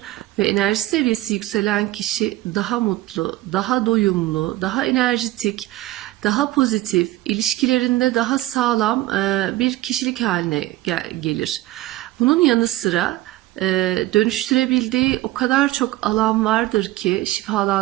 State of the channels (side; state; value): left; quieter; 17.1 dB